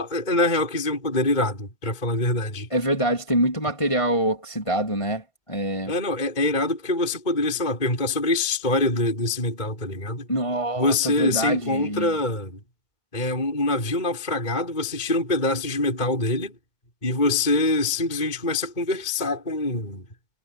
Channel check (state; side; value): late; right; 2.2 ms